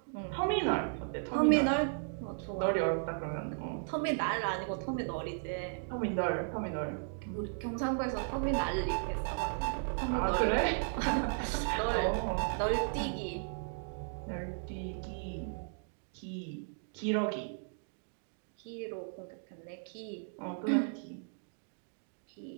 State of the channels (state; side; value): silent; left; digital silence